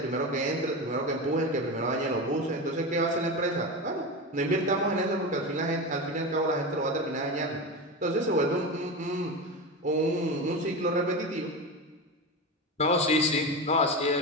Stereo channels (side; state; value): both; normal; correlation 0.22